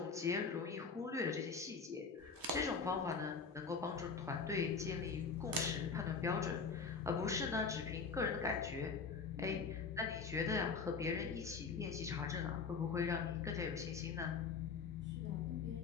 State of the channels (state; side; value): quieter; right; 5.2 dB